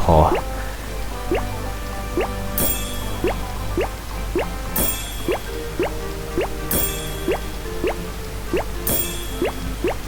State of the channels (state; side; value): identical; both; correlation 1.00